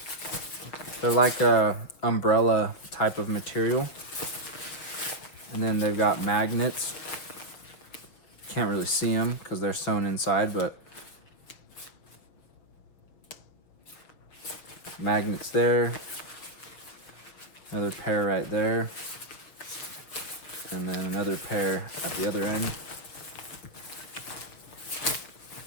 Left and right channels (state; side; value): late; right; 6.5 ms